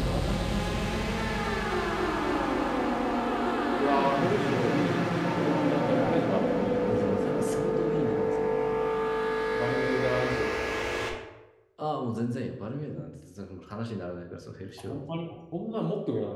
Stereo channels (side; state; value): both; identical; correlation 1.00